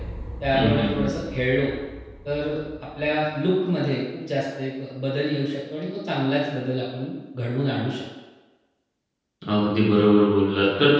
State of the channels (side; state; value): both; identical; correlation 1.00